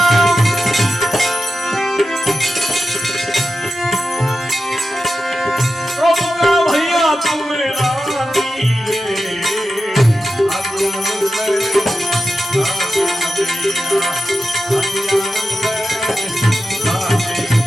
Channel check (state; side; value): normal; both; correlation 0.90